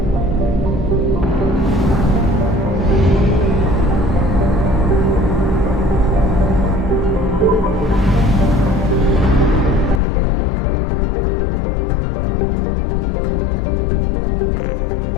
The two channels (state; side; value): drops out; right; at 10.0 s